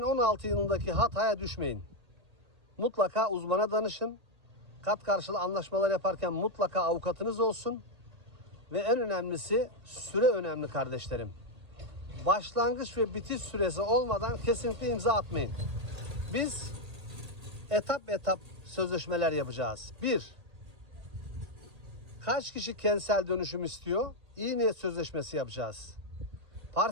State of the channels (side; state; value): left; late; 1.8 ms